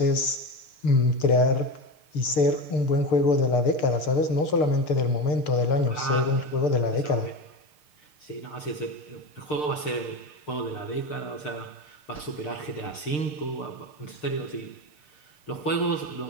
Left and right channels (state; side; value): late; right; 6.6 ms